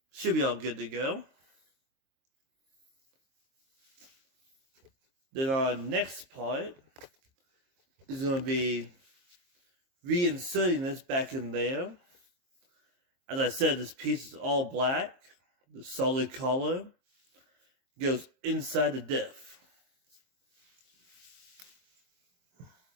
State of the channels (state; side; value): late; left; 22 ms